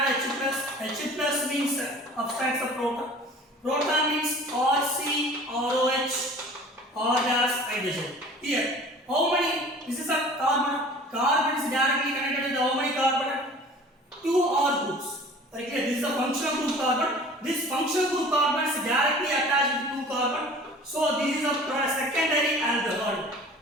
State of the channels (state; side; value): normal; both; correlation 0.45